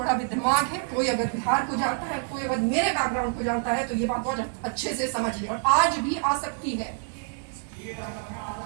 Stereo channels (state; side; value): silent; left; 60 dB below the other